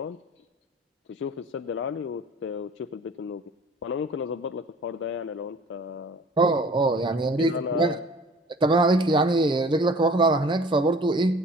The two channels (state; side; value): normal; both; correlation 0.48